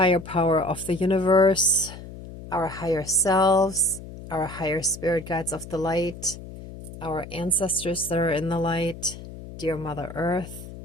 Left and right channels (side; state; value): left; noise; hum, 13 dB below the sound